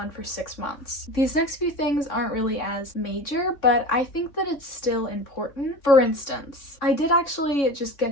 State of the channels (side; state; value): right; late; 3.6 ms